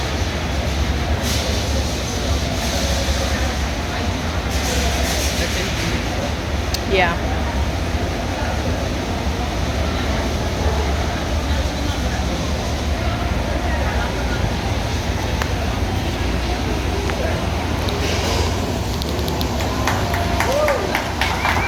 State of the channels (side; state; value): both; identical; correlation 1.00